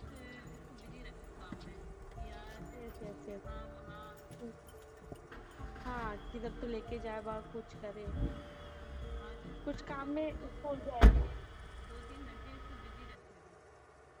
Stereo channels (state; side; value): identical; both; correlation 1.00